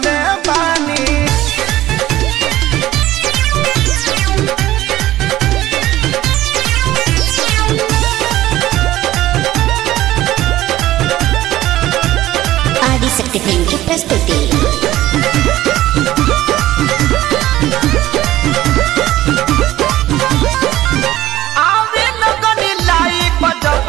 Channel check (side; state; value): left; quieter; 14.9 dB